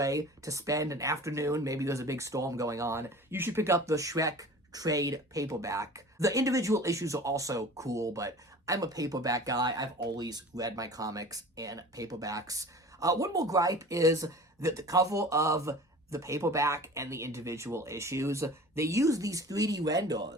to spend an afternoon. Maybe there's a big storm going on. You should pick up the Shrek trade paperback. The individual issues are also cool, but I'm a paperback guy. I've always read my comics in paperbacks. One more gripe is that the cover of the paperback and the individual issues, they use these 3D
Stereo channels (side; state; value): both; normal; correlation 0.40